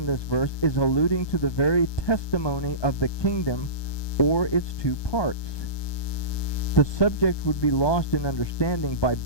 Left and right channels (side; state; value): right; late; 1.2 ms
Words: this verse is alluding to the very testimony of the kingdom or its two parts. The subject would be lost in understanding by